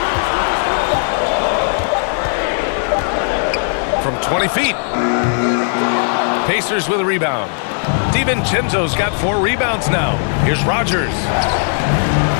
From 20 feet. Pacers with a rebound. DiVincenzo's got 4 rebounds now. Here's Rogers.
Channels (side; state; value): right; silent; 68 dB below the other